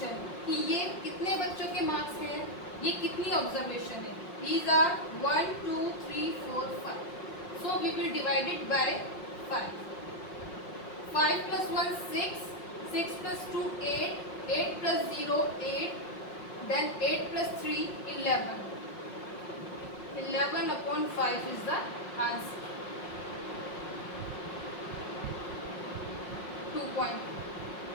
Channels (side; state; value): right; late; 5.6 ms